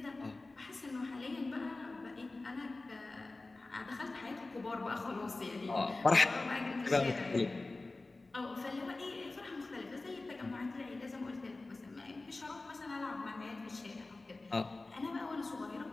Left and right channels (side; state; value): right; quieter; 3.2 dB